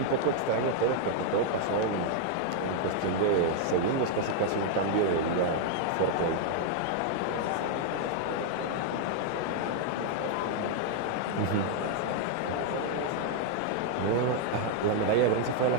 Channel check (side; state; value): both; different; correlation 0.00